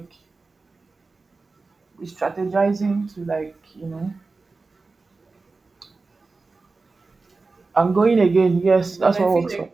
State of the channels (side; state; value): left; quieter; 3.9 dB